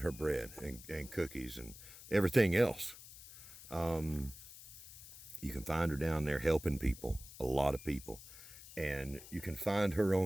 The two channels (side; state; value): left; noise; hiss, 16 dB below the sound